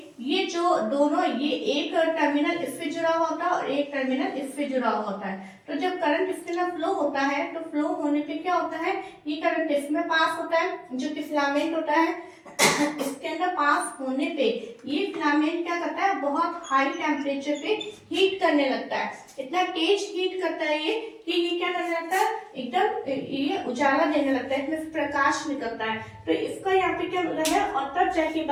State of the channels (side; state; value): both; identical; correlation 1.00